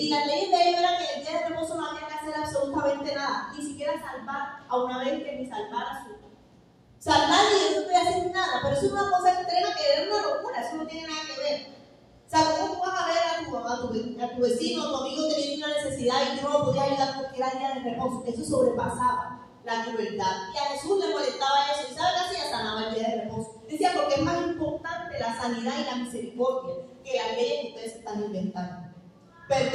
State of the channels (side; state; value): both; identical; correlation 1.00